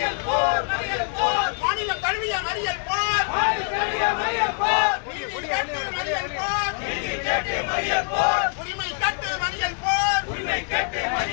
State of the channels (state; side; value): quieter; right; 39.4 dB